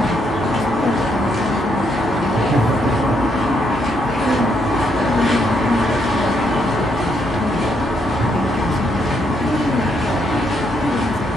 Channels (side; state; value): both; normal; correlation 0.75